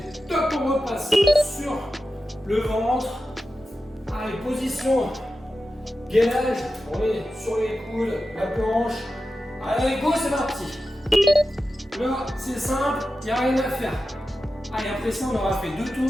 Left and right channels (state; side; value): normal; both; correlation 0.92